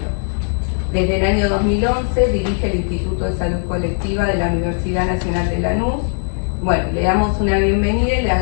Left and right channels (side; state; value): right; silent; digital silence